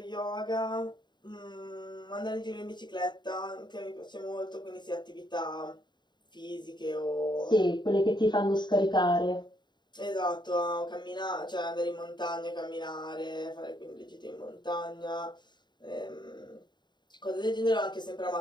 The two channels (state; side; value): late; right; 0.21 ms